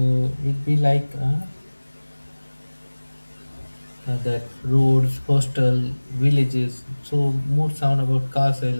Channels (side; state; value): both; inverted; correlation -1.00